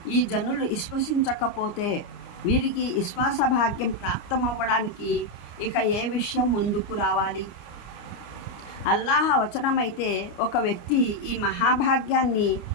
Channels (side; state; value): right; late; 29 ms